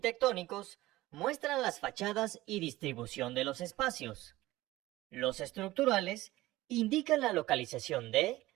muestran las fachadas y distribución de los espacios. Los estructurales indican la localización de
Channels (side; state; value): left; quieter; 17.6 dB